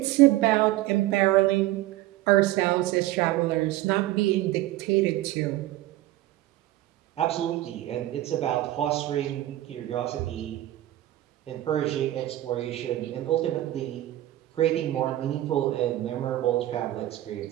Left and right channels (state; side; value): quieter; left; 15.2 dB